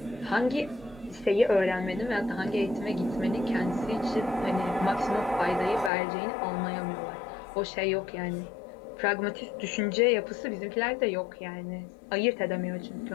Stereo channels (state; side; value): drops out; right; at 5.9 s